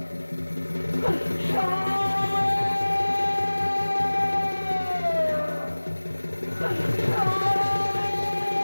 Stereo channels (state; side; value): inverted; both; correlation -1.00